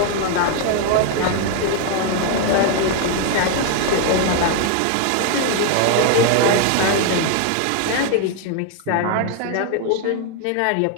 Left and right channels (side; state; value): both; different; correlation 0.01